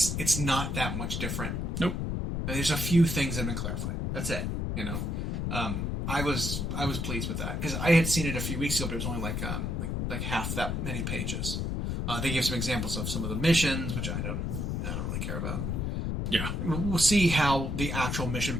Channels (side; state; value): left; noise; rumble, 1 dB below the sound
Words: not that much different. Nope. There's a few things that have been clarified. That's it. You know, I was pleased with that because I had seen it a few weeks ago, but it was only like half that many pages. They gave some examples of some of the missions, which I don't really care about. Yeah. We'll see how the actual mission